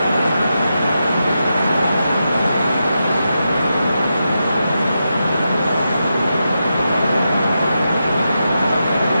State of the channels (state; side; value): inverted; both; correlation -0.87